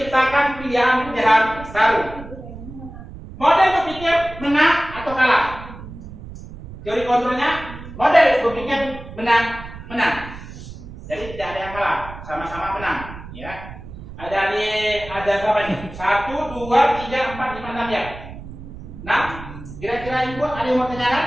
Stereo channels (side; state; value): right; noise; rumble, 14 dB below the sound